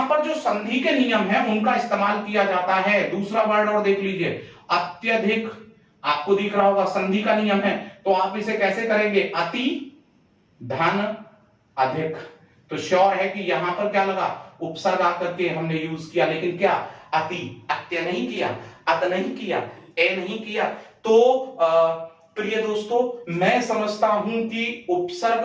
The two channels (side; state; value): both; identical; correlation 1.00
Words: पर जो संधि के नियम है उनका इस्तेमाल किया जाता है। दूसरा वर्ड और देख लीजिए, अत्यधिक। आपको दिख रहा होगा संधि का नियम है, तो आप इसे कैसे करेंगे? अति धन अधिक। तो श्योर है कि यहां पर क्या लगा? उपसर्ग आकर के हमने यूज किया, लेकिन क्या? अति। अत्य नहीं किया, अत नहीं किया, ए नहीं किया। तो प्रिय दोस्तों, मैं समझता हूं कि